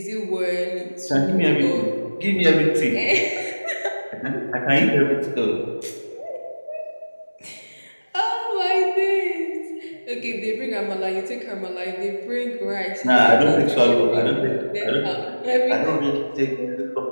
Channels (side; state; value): both; inverted; correlation -1.00